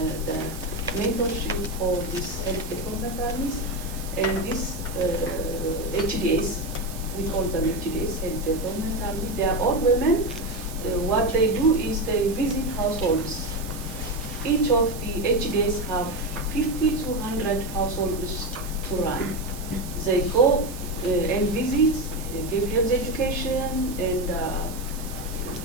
the mentorship for these health development armies. And these HDAs, we call them HDAs, health development army, they are all women. What they do is they visit households. Each of the HDAs have 50 to 100 households to run. They go and visit give health education and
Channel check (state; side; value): noise; right; hiss, 14 dB below the sound